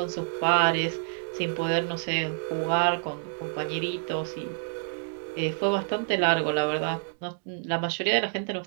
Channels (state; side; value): silent; left; digital silence